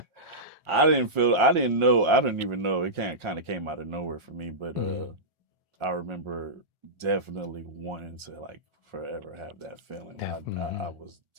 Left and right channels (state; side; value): late; left; 1.4 ms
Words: I didn't know, I didn't even know. It kind of came out of nowhere for me, but Hmm. I remember definitely wanting to like forever have that feeling. I Hmm. was